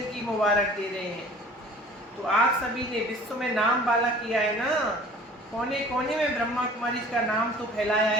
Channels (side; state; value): both; normal; correlation 0.47